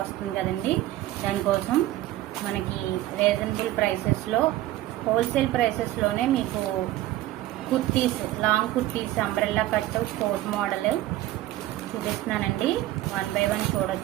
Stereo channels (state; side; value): quieter; left; 15.4 dB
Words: వస్తుంది కదండి, దానికోసం మనకి రీజనబుల్ ప్రైసెస్లో హోల్సేల్ ప్రైసెస్లోనే మీకు kurtis, long kurtis, umbrella cut, coat model చూపిస్తున్నానండి. 1 by 1